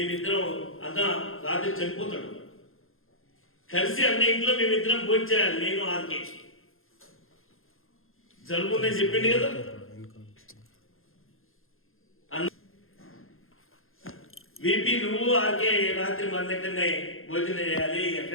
అన్న రాత్రి చనిపోతాడు కలిసి అన్న ఇంట్లో మేమిద్దరం భోంచేయాలి. నేను ఆర్కే జరుగుతుందని చెప్పింది కదా. వీపీ నువ్వు ఆర్కే రాత్రి మన దగ్గరనే భోజనం చేయాలి,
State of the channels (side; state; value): right; late; 0.60 ms